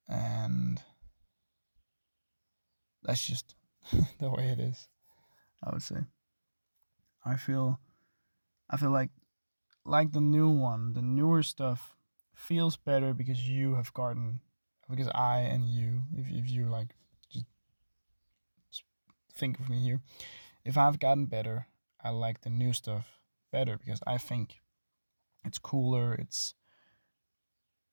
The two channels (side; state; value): both; inverted; correlation -1.00